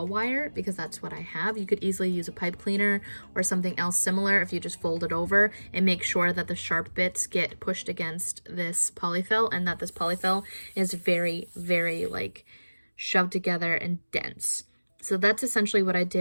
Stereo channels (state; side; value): inverted; both; correlation -1.00